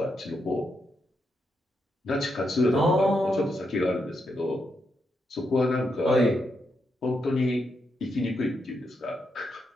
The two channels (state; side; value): normal; both; correlation 0.82